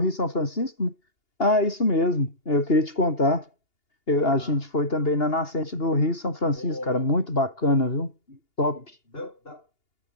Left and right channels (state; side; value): late; right; 2.8 ms